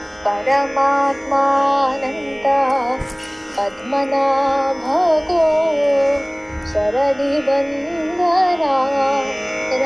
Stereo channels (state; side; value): identical; both; correlation 1.00